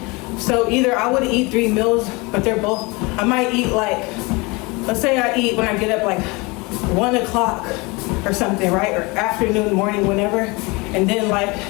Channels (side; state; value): right; quieter; 26.0 dB